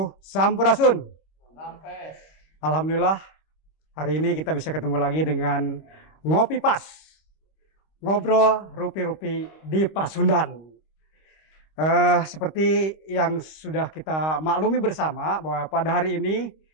Sampurasun. Sampai. Alhamdulillah, hari ini kita bisa ketemu lagi dengan Ngopi Pas. Ngobrol rupi-rupi di Pasundan. Seperti yang sudah kita maklumi bersama bahwa pada hari ini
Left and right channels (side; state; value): right; late; 26 ms